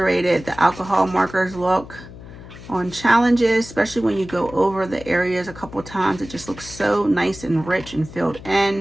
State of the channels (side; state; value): left; noise; hum, 16 dB below the sound